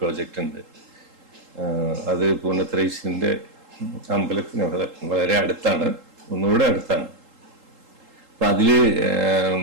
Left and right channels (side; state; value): left; late; 3.8 ms